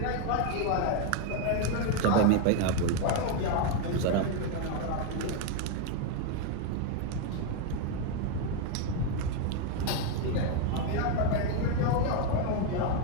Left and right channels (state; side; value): different; both; correlation 0.01